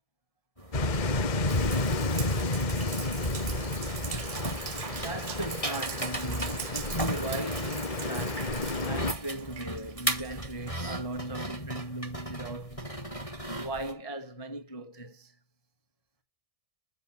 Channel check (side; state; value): right; late; 1.7 ms